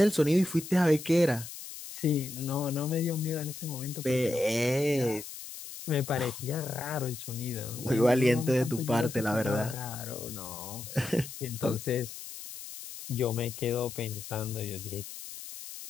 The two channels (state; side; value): noise; left; hiss, 11 dB below the sound